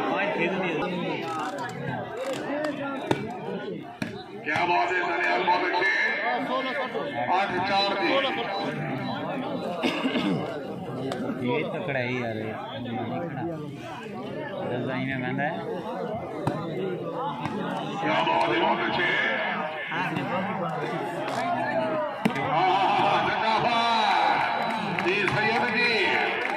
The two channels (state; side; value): identical; both; correlation 1.00